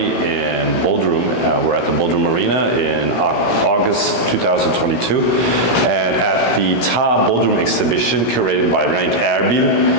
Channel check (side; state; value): right; late; 17 ms